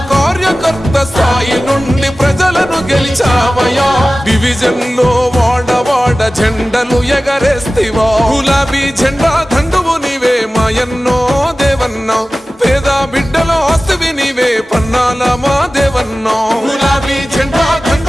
కార్యకర్త స్థాయి నుండి ప్రజలను గెలిచావయా, డివిజన్ లో వాడవాడ జెండలు ఎగరేస్తివో, గులాబీ జెండా దండువు నీవే మాయన్నో దేవన్నో, పేద బిడ్డలో ఆస్తివి నీవే పన్నాల మా దేవన్నో, గులాబీ జెండా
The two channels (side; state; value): both; normal; correlation 0.96